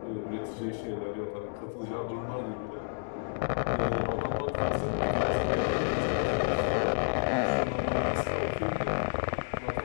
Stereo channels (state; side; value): silent; right; digital silence